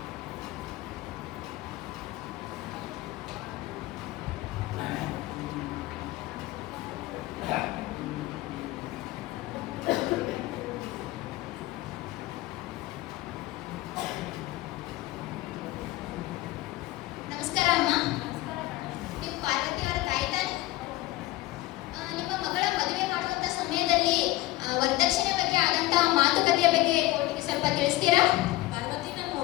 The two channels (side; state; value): right; quieter; 17.8 dB